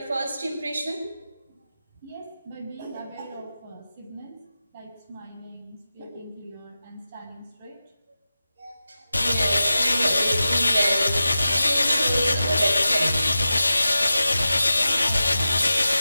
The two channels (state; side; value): inverted; both; correlation -0.93